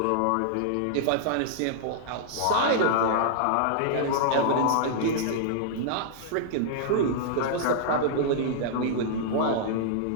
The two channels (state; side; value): different; both; correlation -0.01